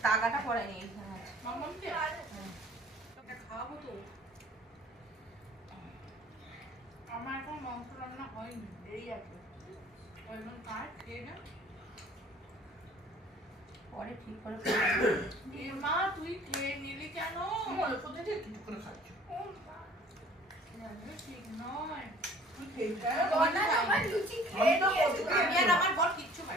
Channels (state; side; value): normal; both; correlation 0.51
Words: তাগাটা পড়ায়নি। খাওয়াবো তো। আমার এখন মাংস রান্না হয়নি, দেরি আছে। ওই জন্য কাজ খেয়ে না, পরে ঠিক করে মা তুই খেয়ে নিলি কেন? কোথায় থেকে কিছু করে খাচ্ছ? ঠিক নয়, তুই খেয়ে বনা আমার লুচি খেয়ে নিয়েছো। আমি আর আমার বর কিচ্ছু